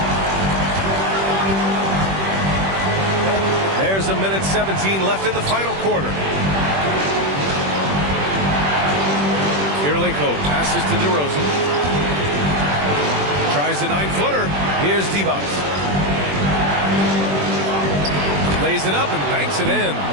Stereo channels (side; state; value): left; late; 21 ms